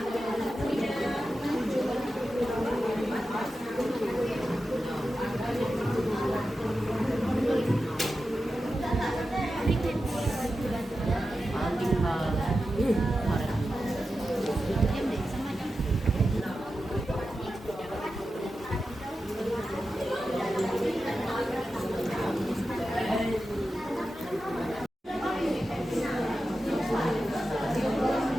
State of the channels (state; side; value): normal; both; correlation 0.91